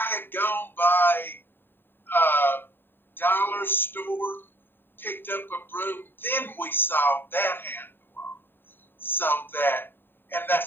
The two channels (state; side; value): late; right; 0.097 ms